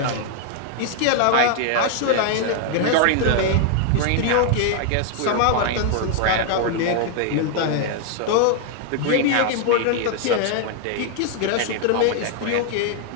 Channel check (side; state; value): both; different; correlation 0.00